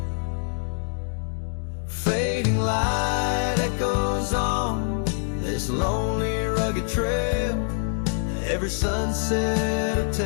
Fading light echoes on this lonely, rugged trail. Every sunset a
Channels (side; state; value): right; silent; digital silence